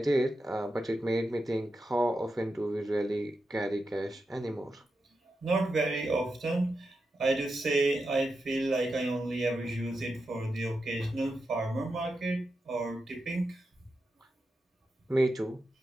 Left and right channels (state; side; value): normal; both; correlation 0.88